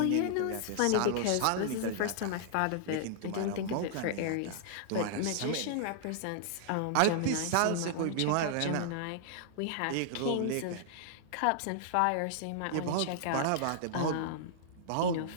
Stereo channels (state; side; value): different; both; correlation -0.01